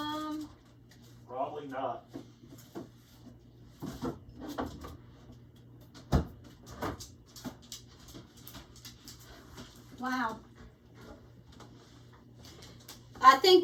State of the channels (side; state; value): both; identical; correlation 1.00